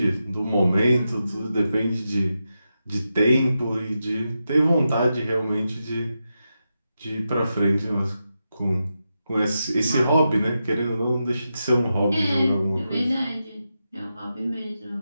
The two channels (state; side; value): inverted; both; correlation -0.88